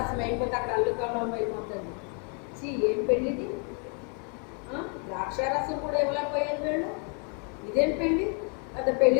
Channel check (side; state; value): right; quieter; 38.3 dB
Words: అయిపోతే అక్కడ అల్లుకలం అయిపోతుంది. ఏం పెళ్ళిది, ద్రాక్షారసం కూడా ఇవ్వలేకపోయారు వీళ్ళు, ఇదేం పెళ్ళి, అది